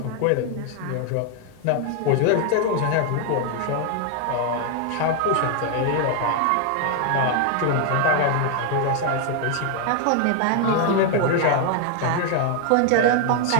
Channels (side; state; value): both; different; correlation 0.00